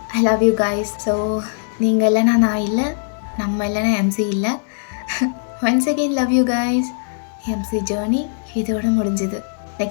I love you guys. So நீங்கள் இல்லைனா நான் இல்லை, நம்ம இல்லைனா எம்சி இல்லை. Once again love you guys. MC journey இதோட முடிஞ்சுது.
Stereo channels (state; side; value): silent; right; 62 dB below the other